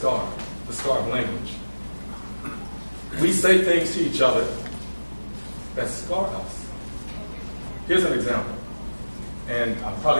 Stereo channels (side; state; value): both; inverted; correlation -1.00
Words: the scar of language. We say things to each other that scar us. Here's an example, and I'll